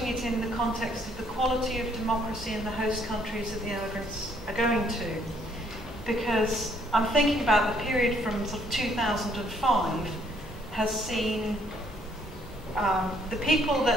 it in the context of the quality of democracy in the host countries that the immigrants are going to. Because I'm thinking about the period from sort of 2005 has seen the people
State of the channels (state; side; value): normal; both; correlation 0.66